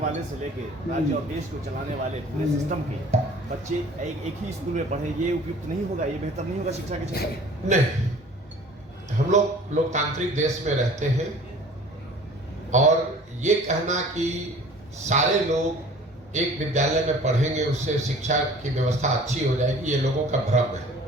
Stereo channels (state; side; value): normal; both; correlation 0.47